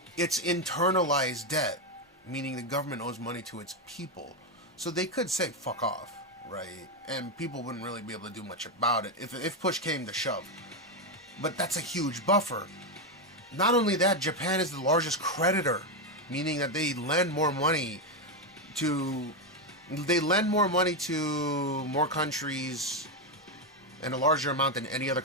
It's internalized debt, meaning the government owes money to its people. So they could say, fuck off, right? And people wouldn't really be able to do much about it if push came to shove. But that's a huge buffer. Not only that, Japan is the largest creditor, meaning that they lend more money to more countries and a larger amount than any other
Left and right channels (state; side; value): normal; both; correlation 0.07